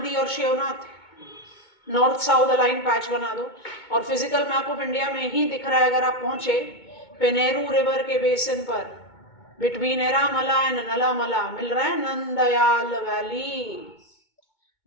और Shivnath, north south align patch बना दो। और फिजिकल मैप ऑफ इंडिया में ही दिख रहा है अगर आप पहुंचे पेनेरू रिवर के बेसिन पर, बिटवीन एरामला एंड नलामला मिल रहा है Nandyal valley.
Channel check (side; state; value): right; late; 2.2 ms